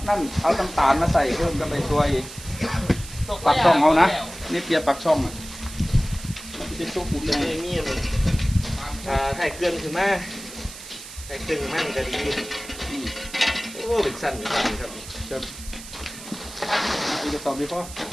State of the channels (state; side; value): noise; right; hiss, 14 dB below the sound